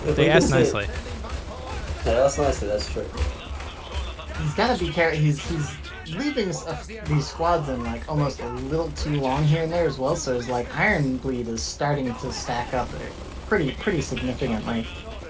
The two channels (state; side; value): identical; both; correlation 1.00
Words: ask nicely. They ask nicely, that's true. He's gotta be careful. He's leaving these squads in like almost a little too long here and there as well. So his like Iron Bleed is starting to stack up pretty significantly.